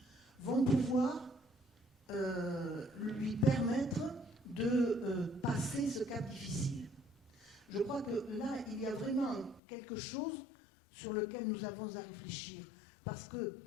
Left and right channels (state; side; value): drops out; right; at 9.6 s